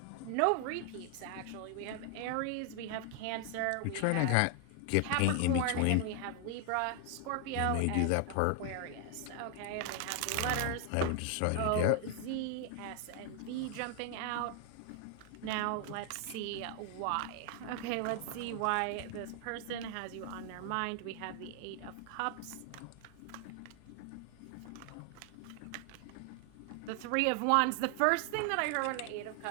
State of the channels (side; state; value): both; different; correlation 0.00